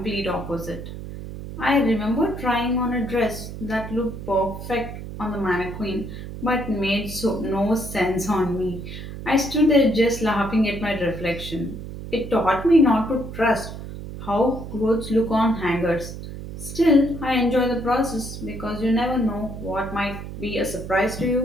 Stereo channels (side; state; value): right; noise; hum, 10 dB below the sound